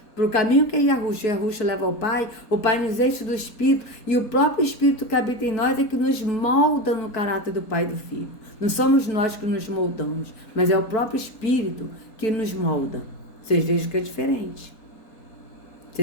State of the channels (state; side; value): late; right; 4.2 ms